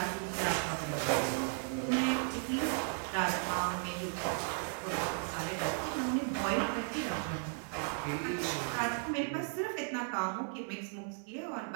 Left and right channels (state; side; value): silent; left; 54 dB below the other